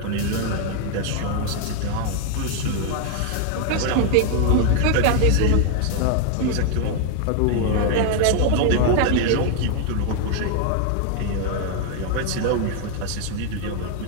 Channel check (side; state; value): both; different; correlation 0.01